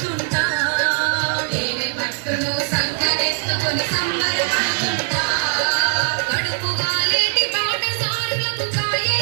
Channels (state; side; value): silent; left; 64 dB below the other